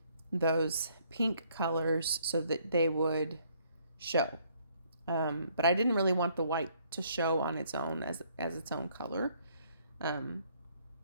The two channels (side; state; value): both; inverted; correlation -0.66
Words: those pink colors so that they would show. But I didn't really want the white to show on its own as its own color.